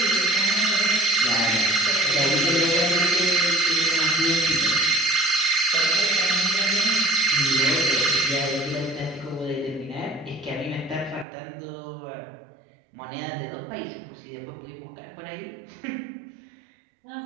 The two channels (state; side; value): drops out; left; at 11.2 s